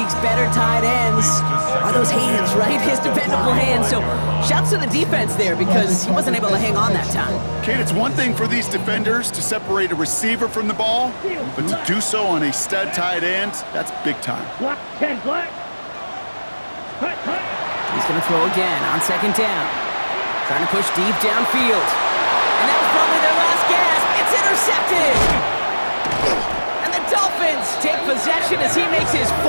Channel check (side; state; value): both; inverted; correlation -1.00